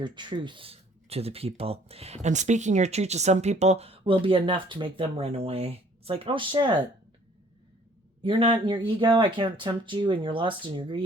truth to the people. And speaking your truth to some people will be enough to make them run away. It's like, oh shit, you're not in your ego. I can't tempt you in your lust and your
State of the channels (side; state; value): both; normal; correlation 0.58